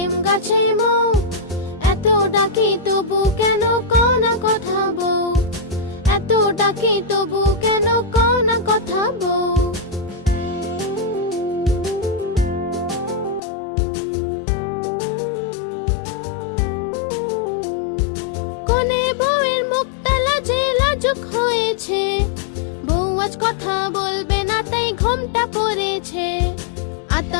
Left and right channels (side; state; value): right; drops out; at 13.4 s